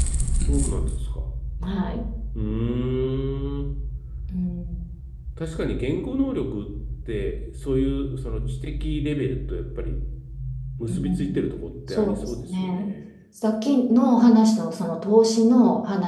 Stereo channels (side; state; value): both; identical; correlation 1.00